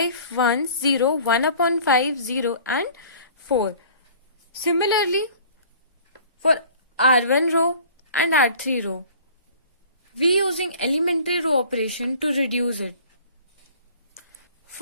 1, 0, 1 upon 5, 0 and 4. Similarly, for R1 row and R3 row, we using elementary row operation to reduce it.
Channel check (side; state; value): both; inverted; correlation -0.49